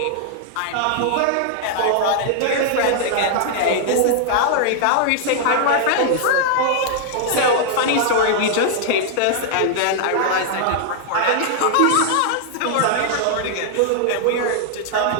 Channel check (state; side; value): different; both; correlation -0.01